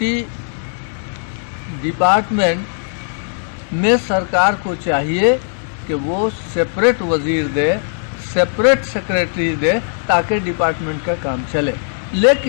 डिपार्टमेंट में सरकार को चाहिए कि वो सेपरेट वजीर दे, सेपरेट सेक्रेटरी दे, ताकि डिपार्टमेंट का काम चले।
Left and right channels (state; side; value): silent; right; digital silence